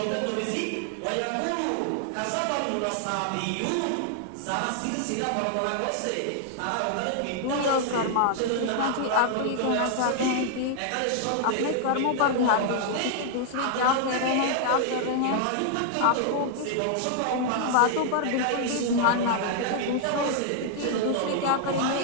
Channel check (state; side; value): different; both; correlation 0.00